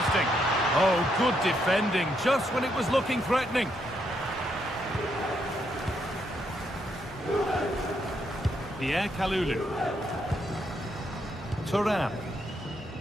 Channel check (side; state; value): both; normal; correlation 0.77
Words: Oh, good defending, just when it was looking threatening. Pierre Kalulu. Thuram.